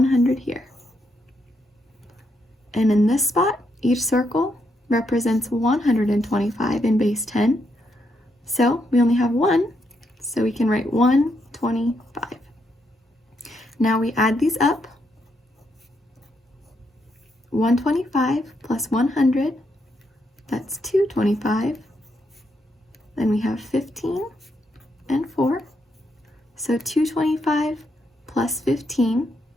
here. And in this spot, each circle represents 125 in base 10. So we only have 1, so we can write 125. Now we add these up. 125 plus 100, that's 225. Then we have 15 and 4. So 225 plus 15,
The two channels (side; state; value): both; normal; correlation 0.79